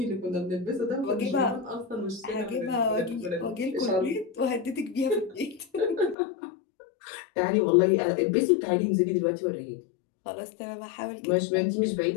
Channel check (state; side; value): drops out; right; at 6.2 s